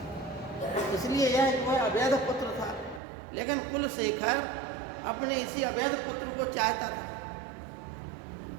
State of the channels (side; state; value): left; drops out; at 3.0 s